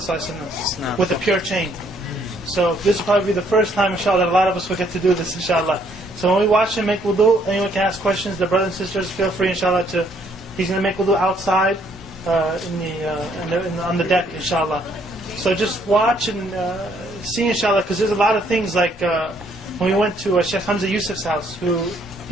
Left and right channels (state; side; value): normal; both; correlation 0.67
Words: ﷺ, with a pure chain. So this will probably be the first time, inshallah, that a lot of us will get to do this, inshallah. So when we watch him make wudu, anyone can ask questions. The brothers and sisters, feel free, inshallah, to. He's going to make wudu outside, on the deck, inshallah. So just watch and see, inshallah, because there's a lot of things like when we went to Sheikh Hamza Yusuf's house, who